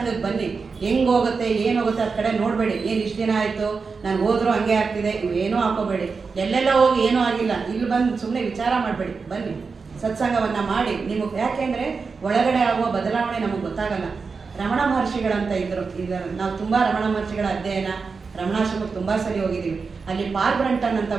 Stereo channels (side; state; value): left; quieter; 4.9 dB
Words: ಬನ್ನಿ. ಹೆಂಗೆ ಹೋಗುತ್ತೆ ಏನು ಹೋಗುತ್ತೆ ಅದ ಕಡೆ ನೋಡಬೇಡಿ. ಏನು ಇಷ್ಟು ದಿನ ಆಯಿತು ನಾನು ಹೋದ್ರೂ ಹಂಗೆ ಆಗ್ತಿದೆ, ಏನೂ ಹಾಕೋಬೇಡಿ. ಎಲ್ಲೆಲ್ಲ ಹೋಗಿ ಏನೂ ಆಗಿಲ್ಲ, ಇಲ್ಲಿ ಬಂದು ಸುಮ್ಮನೆ ವಿಚಾರ ಮಾಡಬೇಡಿ. ಬನ್ನಿ ಸತ್ಸಂಗವನ್ನು ಮಾಡಿ. ನಿಮಗೆ ಯಾಕೆಂದರೆ ಒಳಗಡೆ ಆಗುವ ಬದಲಾವಣೆ ನಮಗೆ ಗೊತ್ತಾಗಲ್ಲ. ರಮಣ ಮಹರ್ಷಿಗಳಂತ ಇದ್ದರು. ನಾವು ತುಂಬ ರಮಣ ಮಹರ್ಷಿಗಳ ಅಧ್ಯಯನ, ರಮಣಾಶ್ರಮಕ್ಕೆ ತುಂಬ ಸರಿ ಹೋಗಿದ್ದೀವಿ. ಅಲ್ಲಿ ಪಾಲ್ ಬ್ರಂಟನ್ ಅಂತ